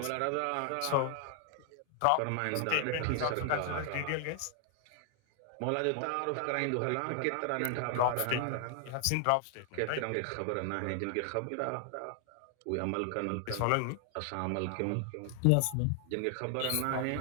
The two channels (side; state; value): both; different; correlation 0.00